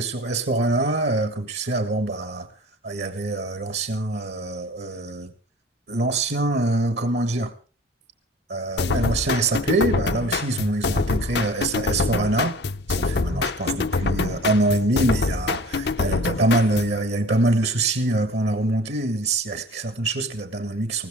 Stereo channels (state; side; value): normal; both; correlation 0.44